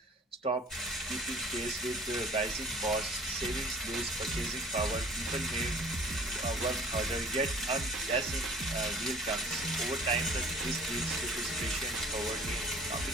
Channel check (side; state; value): both; normal; correlation 0.50